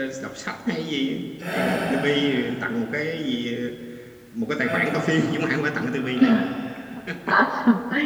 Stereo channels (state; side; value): identical; both; correlation 1.00